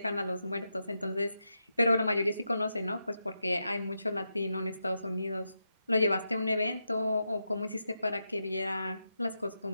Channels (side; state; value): both; inverted; correlation -0.87